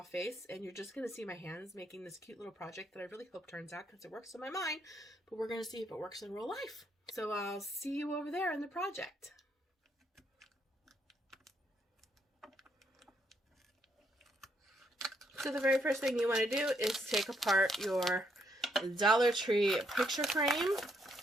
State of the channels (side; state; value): both; normal; correlation 0.74